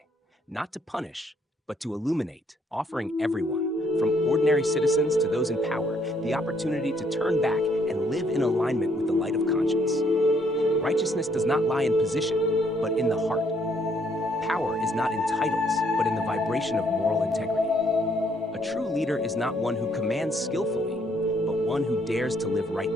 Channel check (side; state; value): both; normal; correlation 0.68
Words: not to punish, but to illuminate, offering everyone, from ordinary citizens to those in power, the opportunity to turn back and live in alignment with the light of conscience. Righteousness does not lie in position, but in the heart. Power is not in titles, but in the vibration of moral integrity. A true leader is not one who commands skillfully, but one who dares to live